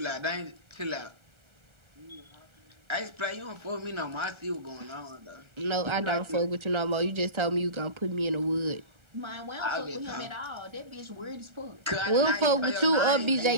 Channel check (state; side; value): late; left; 1.3 ms